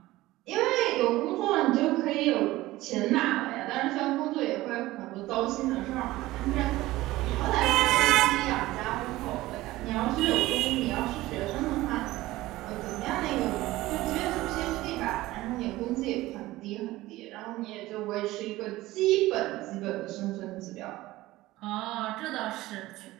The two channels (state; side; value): quieter; left; 17.7 dB